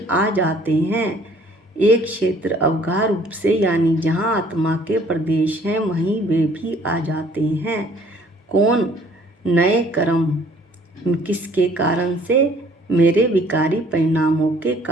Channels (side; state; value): both; normal; correlation 0.57